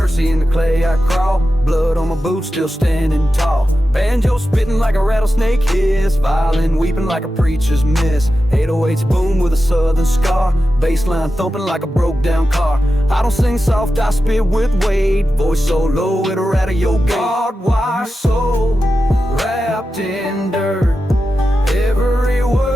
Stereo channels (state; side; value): normal; both; correlation 0.92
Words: in the clay I crawl, blood on my boots still standing tall. Banjo spitting like a rattlesnake hiss, violin weeping like a preacher's miss. 808s boom with a southern scar, bassline thumping like a broke down car. I don't sing soft, I spit with weight, voice so low it'll rattle your gate. Barbed-wire soul, wrapped in dirt, every